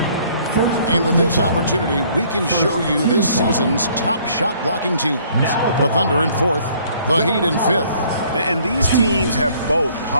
And with this opportunity, we can show you this season's top shot blocking teams. The Thunder in 4th. The Heat in 5th. And these teams have both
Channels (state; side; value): inverted; both; correlation -0.60